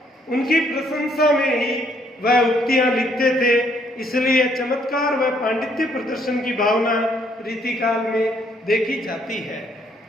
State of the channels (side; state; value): both; normal; correlation 0.68